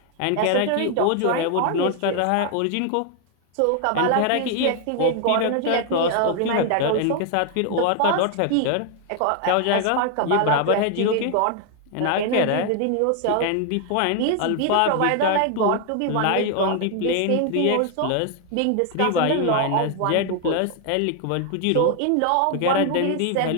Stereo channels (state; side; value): different; both; correlation 0.00